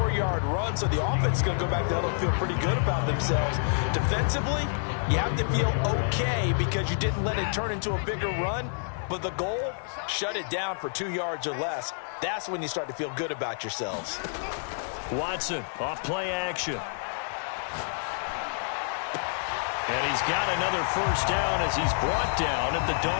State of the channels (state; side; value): silent; right; digital silence